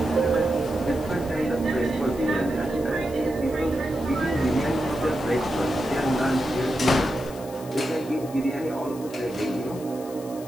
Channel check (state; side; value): noise; left; hiss, 19 dB below the sound